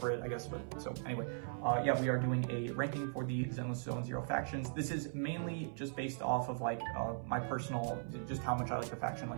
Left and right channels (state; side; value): silent; left; 52 dB below the other